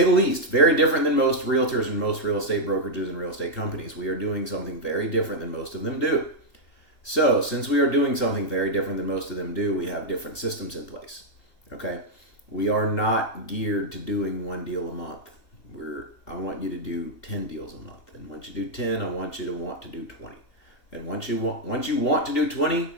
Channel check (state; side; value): late; right; 2.7 ms